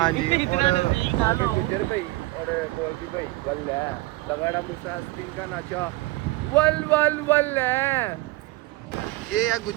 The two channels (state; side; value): quieter; left; 20.3 dB